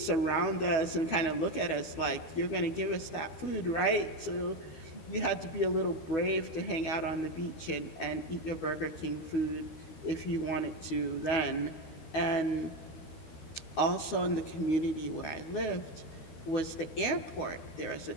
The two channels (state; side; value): late; right; 12 ms